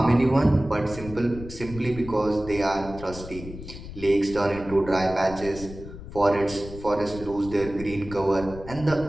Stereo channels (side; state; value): left; noise; rumble, 13 dB below the sound